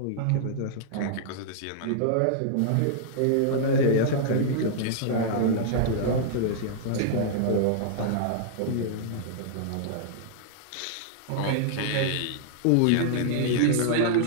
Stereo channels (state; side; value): different; both; correlation -0.01